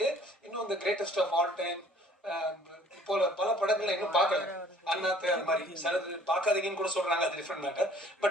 இன்னும் இந்த கிரேட்டஸ்ட் ஆஃப் ஆல் டைம் போல பல படங்களை இன்னும் பார்க்கல. அண்ணாத்து அது மாதிரி சிலது பார்க்காதீங்கன்னு கூட சொல்றாங்க, அது டிஃப்ரெண்ட் மேட்டர்.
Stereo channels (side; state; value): both; normal; correlation 0.55